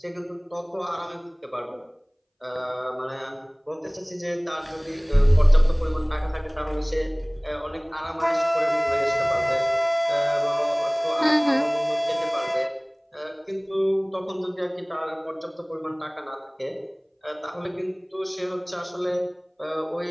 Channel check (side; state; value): both; identical; correlation 1.00